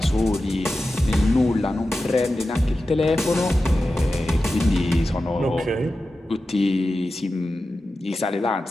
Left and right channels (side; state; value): both; normal; correlation 0.93